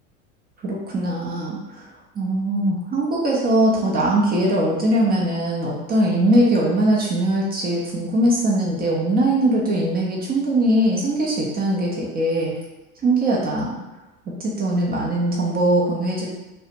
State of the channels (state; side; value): normal; both; correlation 0.50